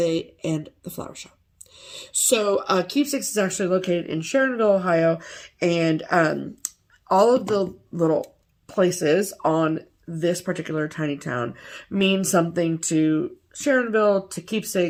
and the flower shop. So Keepsakes is actually located in Sharonville, Ohio, and all of the little places on this particular tiny town mean something to Sharonville, to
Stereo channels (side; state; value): both; identical; correlation 1.00